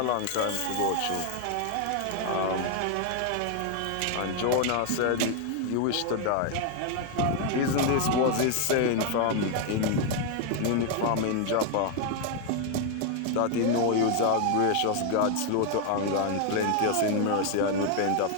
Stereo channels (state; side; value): different; both; correlation 0.01